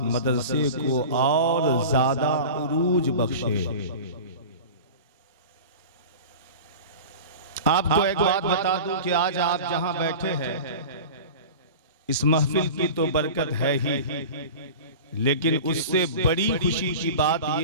मदरसे को और ज़्यादा उरूज बख्शे। आपको एक बात बता दूं कि आज आप जहां बैठे हैं, इस महफिल की तो बरकत है ही, लेकिन उससे बड़ी खुशी की बात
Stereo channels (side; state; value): both; inverted; correlation -0.34